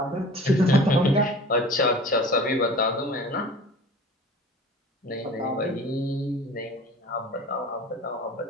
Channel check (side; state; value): both; normal; correlation 0.42